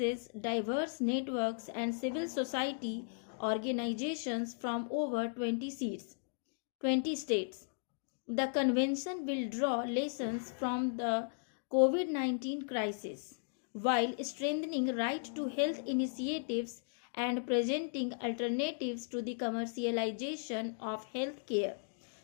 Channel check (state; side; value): silent; right; digital silence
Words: diverse networks and civil society organizations from over 20 states. The convention will draw lessons from the COVID-19 crisis while strengthening right to health initiatives and presenting alternatives to the commercialization of health care.